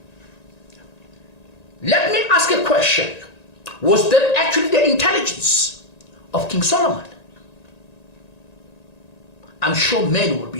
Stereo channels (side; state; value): right; late; 1.9 ms